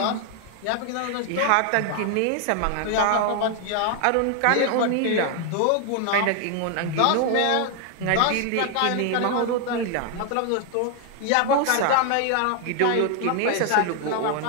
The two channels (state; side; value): different; both; correlation 0.00